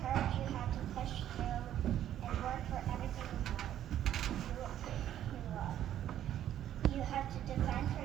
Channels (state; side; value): quieter; left; 11.3 dB